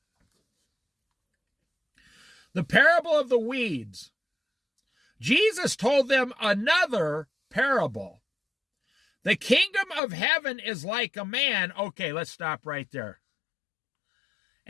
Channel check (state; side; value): drops out; right; at 10.0 s